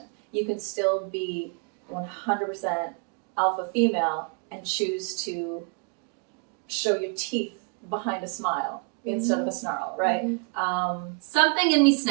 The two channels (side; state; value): left; quieter; 37.4 dB